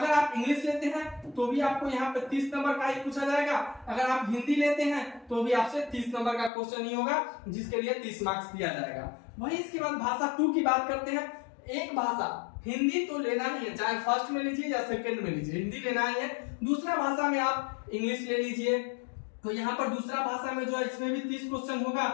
आप इंग्लिश लेते हैं तो भी आपको यहाँ पे 30 नंबर का ही पूछा जाएगा। अगर आप हिंदी लेते हैं तो भी आपसे 30 नंबर का क्वेश्चन ही होगा, जिसके लिए 30 मार्क्स दिया जाएगा। वहीं इसके बाद भाषा 2 की बात करते हैं। एक भाषा हिंदी तो लेना ही है, चाहे फर्स्ट में लीजिए या सेकंड में लीजिए, हिंदी लेना ही है। दूसरा भाषा में आप इंग्लिश ले लीजिए। तो यहाँ पर दूसरा भाषा में जो है इसमें भी 30 क्वेश्चन होगा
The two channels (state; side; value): drops out; right; at 6.5 s